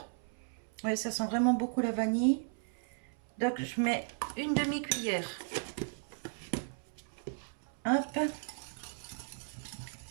Ouais, ça sent vraiment beaucoup la vanille. Donc, je mets une demi-cuillère. Hop.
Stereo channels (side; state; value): left; silent; 54 dB below the other